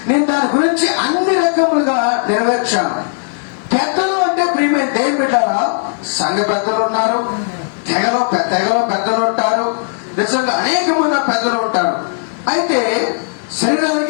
నేను దాని గురించి అన్ని రకములుగా నెరవేర్చాను. పెద్దలు అంటే ప్రియమైన దేవుని బిడ్డలారా, సంఘ పెద్దలు ఉన్నారు, తెగలో పెద్దలు ఉంటారు. నిజంగా అనేకమైన పెద్దలు ఉంటారు. అయితే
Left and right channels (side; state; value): right; silent; digital silence